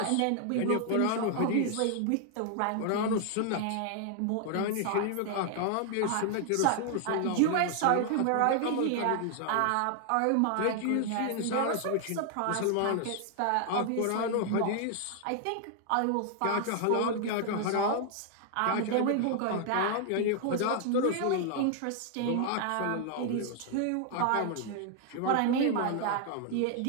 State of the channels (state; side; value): different; both; correlation 0.00